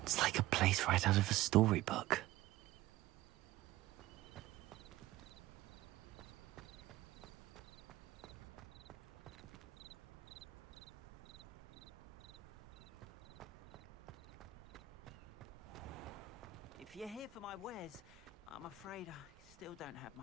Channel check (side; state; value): left; quieter; 13.6 dB